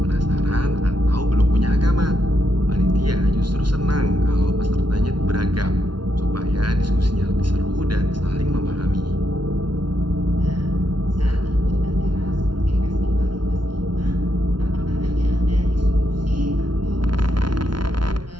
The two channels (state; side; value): late; left; 0.71 ms